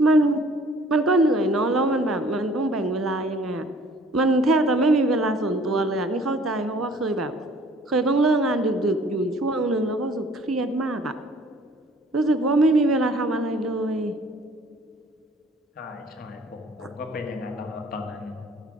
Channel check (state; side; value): normal; both; correlation 0.54